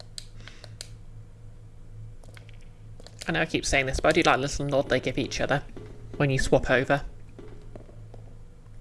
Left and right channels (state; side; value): identical; both; correlation 1.00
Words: I know I keep saying this, but I do like the little nod they give each other when you swap over.